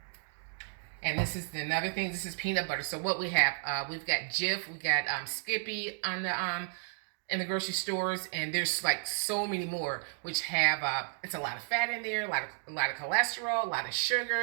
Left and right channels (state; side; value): silent; left; 56 dB below the other